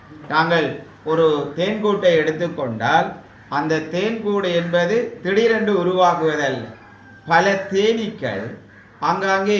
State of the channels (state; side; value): identical; both; correlation 1.00